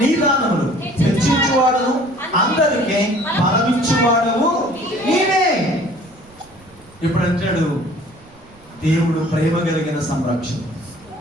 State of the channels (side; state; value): right; noise; rumble, 26 dB below the sound